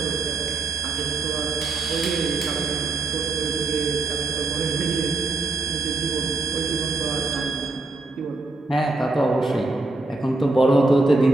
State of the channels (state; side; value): quieter; left; 3.3 dB